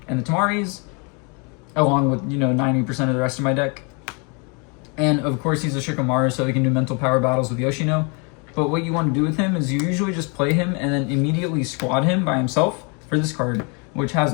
and the Tamaris, along with, 90% of the rest of my deck. And of course he's a Shikamaru, so he can do mental power battles with Yoshino. But what you want to do with him is you usually just play him and then immediately squad him by himself for this card, which has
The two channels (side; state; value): right; quieter; 33.8 dB